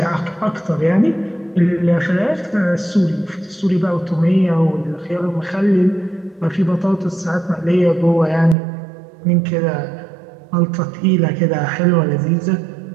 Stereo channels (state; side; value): drops out; left; at 8.6 s